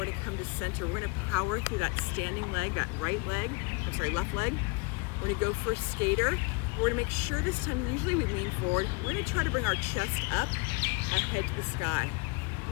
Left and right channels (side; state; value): right; quieter; 27.3 dB